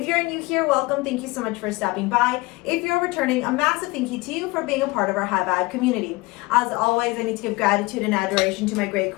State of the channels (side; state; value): right; quieter; 22.8 dB